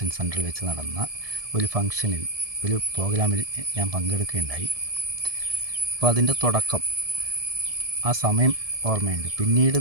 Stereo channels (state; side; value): late; left; 1.7 ms